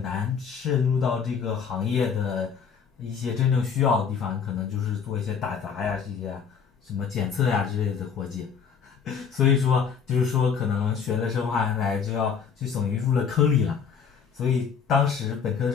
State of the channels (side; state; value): right; quieter; 6.6 dB